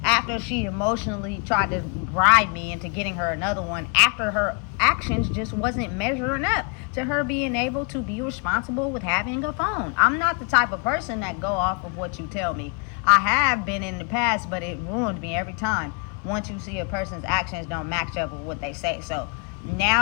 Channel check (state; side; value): quieter; right; 35.4 dB